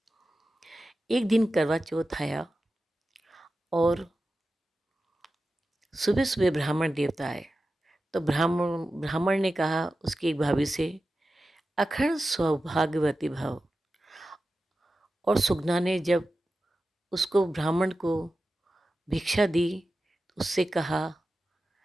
एक दिन करवा चौथ आया और सुबह सुबह ब्राह्मण देवता आए। तो ब्राह्मण ने कहा उसकी एक भाभी से, अखंड सौभाग्यवती भव। और सुगना ने जब उसको ब्राह्मण को भिक्षा दी तो उससे कहा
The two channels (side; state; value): both; normal; correlation 0.93